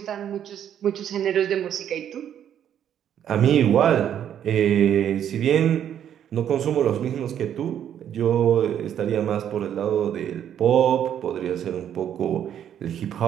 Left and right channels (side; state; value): left; quieter; 9.8 dB